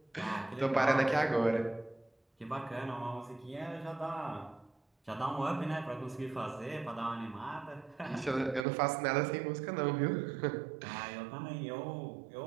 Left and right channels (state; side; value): drops out; left; at 8.7 s